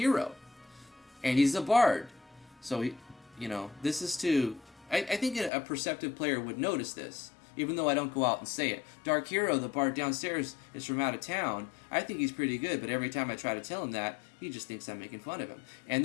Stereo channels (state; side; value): drops out; right; at 5.5 s